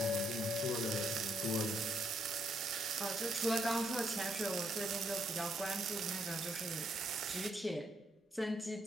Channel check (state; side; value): normal; both; correlation 0.74